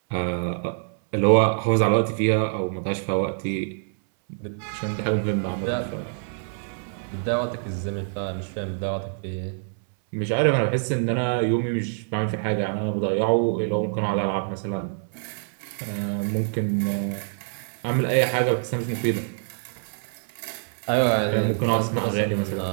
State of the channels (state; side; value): silent; left; 61 dB below the other